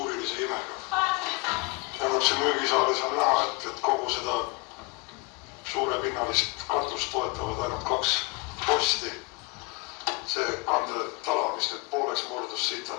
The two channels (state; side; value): quieter; right; 28.1 dB